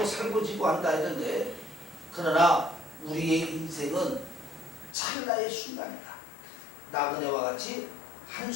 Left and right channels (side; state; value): right; drops out; at 5.0 s